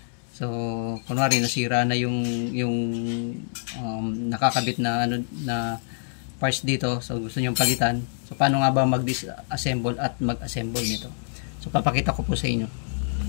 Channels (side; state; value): right; silent; 61 dB below the other